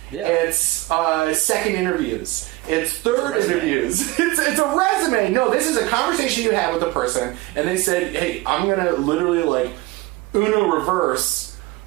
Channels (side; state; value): left; quieter; 20.1 dB